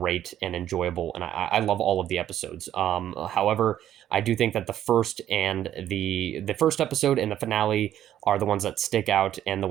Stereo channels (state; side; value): quieter; left; 11.5 dB